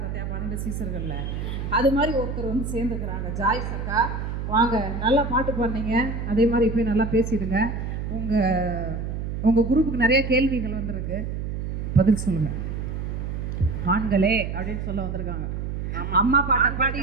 பார்த்தியா 12 சீசர்களில், அது மாதிரி ஒருத்தர் வந்து சேர்ந்துக்கிறாங்க. ஜாய்ஸ் அக்கா வாங்க, நல்லா பாட்டு பாடுனீங்க, அதே மாதிரி போய் நல்லா பேசிடுங்க. உங்கள் குரூப்புக்கு நிறைய கேள்விகள் வந்திருக்கு, பதில் சொல்லுங்கள். ஆண்களே அப்படின்னு சொல்ல வந்திருக்காங்க. அம்மா பாட்டை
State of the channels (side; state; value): right; noise; hum, 4 dB below the sound